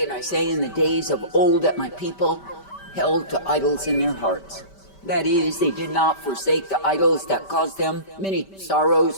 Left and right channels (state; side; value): late; right; 5.1 ms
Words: and I say in the days of old that my people held to idols in their hearts. That is, they did not forsake the idols that caused them many